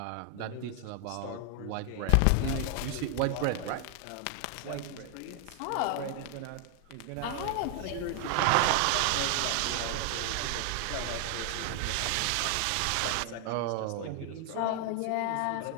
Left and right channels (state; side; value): different; both; correlation 0.00